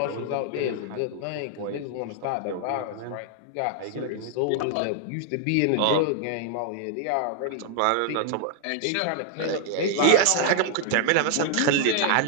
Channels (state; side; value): different; both; correlation 0.00